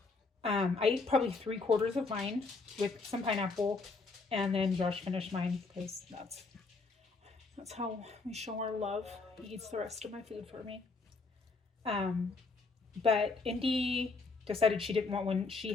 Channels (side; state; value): right; quieter; 4.0 dB